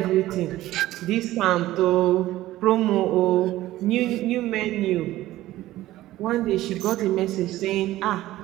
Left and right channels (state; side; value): quieter; left; 15.6 dB